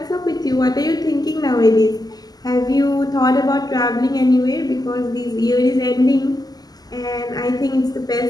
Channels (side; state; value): right; late; 0.19 ms